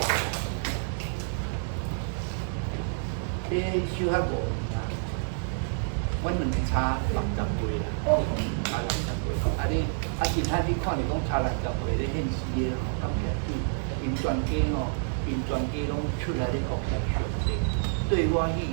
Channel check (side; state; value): left; silent; digital silence